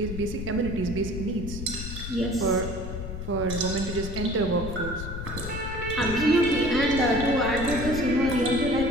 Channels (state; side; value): noise; left; rumble, 7 dB below the sound